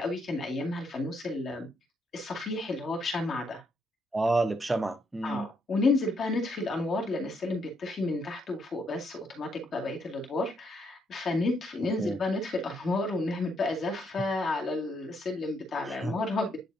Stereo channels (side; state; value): both; normal; correlation 0.75